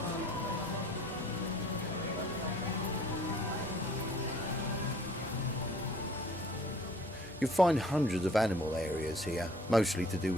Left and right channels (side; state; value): both; normal; correlation 0.54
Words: You'll find hundreds of animal areas here, mostly to do